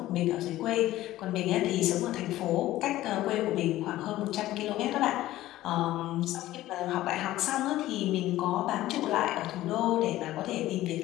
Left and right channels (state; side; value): quieter; right; 15.4 dB